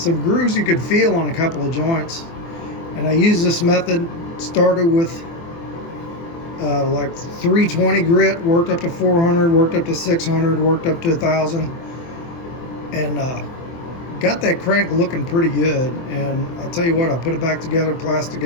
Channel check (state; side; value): late; right; 24 ms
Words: grooves you could feel on a couple of joints. And I used this method, started with like 320 grit, worked up to 400, worked up to 600, worked up to 1000, and got that crank looking pretty good. And I'll tell you what, I put it back together, plastic